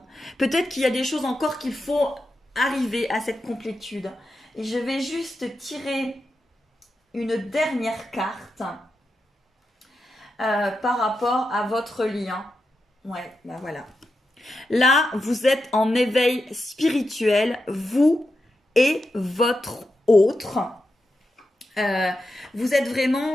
Peut-être qu'il y a des choses encore qu'il faut arriver à cette complétude. Et je vais juste tirer une dernière carte par rapport à votre lien. Ouais, ben voilà. Là, vous êtes en éveil spirituel, vous et votre autre. Vous êtes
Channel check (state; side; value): normal; both; correlation 0.88